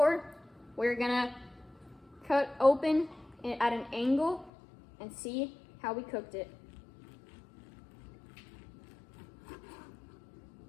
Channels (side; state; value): right; drops out; at 4.5 s